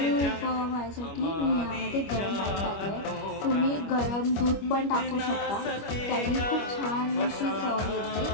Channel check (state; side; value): late; right; 25 ms